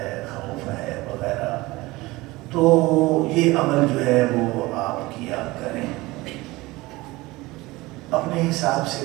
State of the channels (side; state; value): left; quieter; 20.8 dB